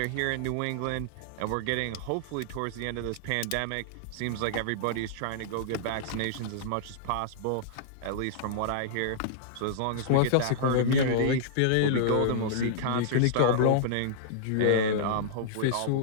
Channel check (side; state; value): both; different; correlation -0.02